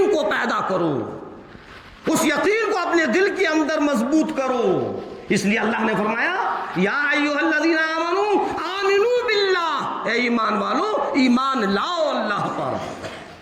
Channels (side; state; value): both; identical; correlation 1.00